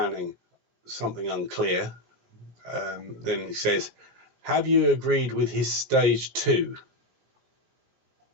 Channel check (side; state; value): left; late; 17 ms